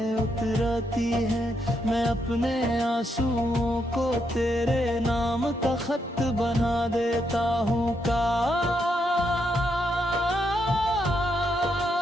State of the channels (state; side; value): normal; both; correlation 0.79